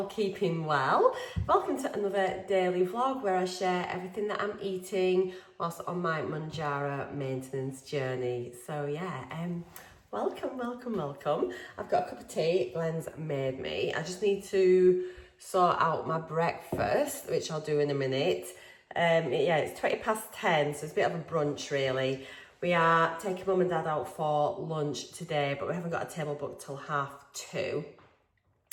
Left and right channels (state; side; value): identical; both; correlation 1.00